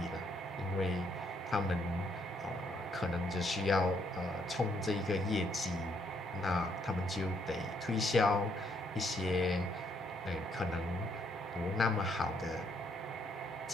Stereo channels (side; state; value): both; normal; correlation 0.72